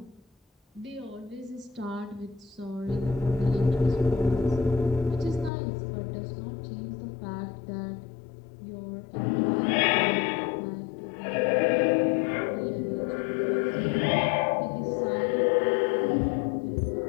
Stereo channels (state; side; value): drops out; right; at 5.5 s